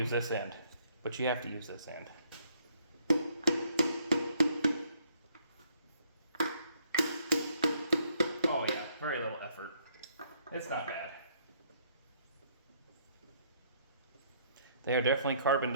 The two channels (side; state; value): both; inverted; correlation -0.66